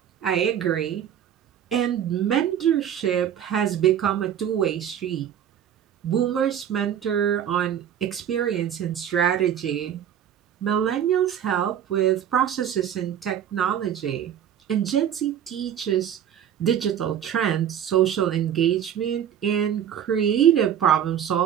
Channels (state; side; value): quieter; left; 9.5 dB